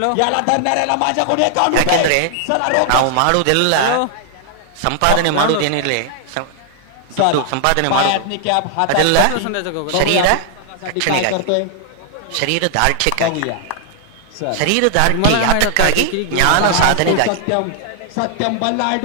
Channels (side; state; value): both; different; correlation 0.00